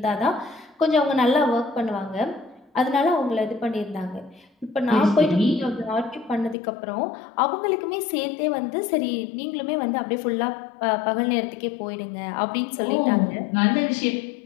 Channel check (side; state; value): right; drops out; at 6.6 s